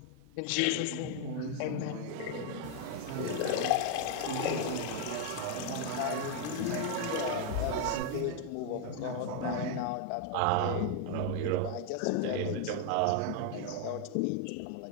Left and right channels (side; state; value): both; different; correlation 0.01